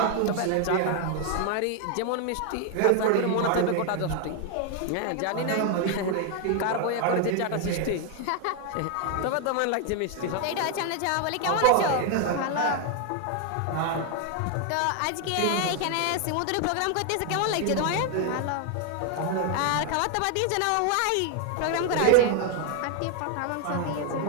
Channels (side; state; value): both; different; correlation 0.00